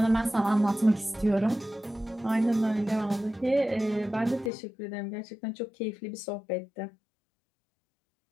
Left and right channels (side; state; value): right; drops out; at 4.5 s